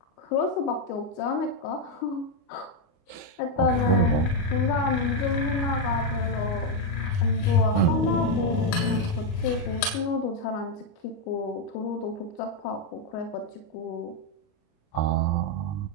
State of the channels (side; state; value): right; late; 29 ms